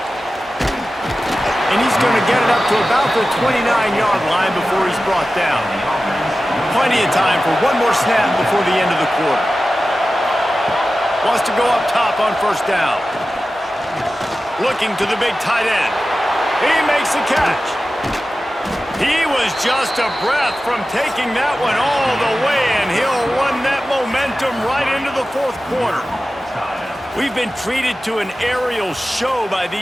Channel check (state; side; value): normal; both; correlation 0.94